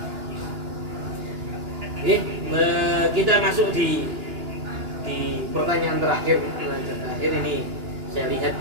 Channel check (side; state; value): left; late; 2.9 ms